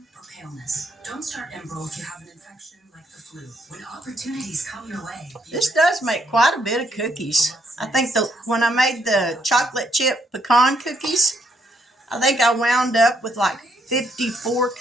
or paleness. Don't start Enbrel if you have an infection like the flu. When opportunities come your way. This does make quite a bit of cookies. I think when I made the chocolate chip pecan cookies, I think I wound up with like 54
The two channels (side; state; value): both; normal; correlation 0.73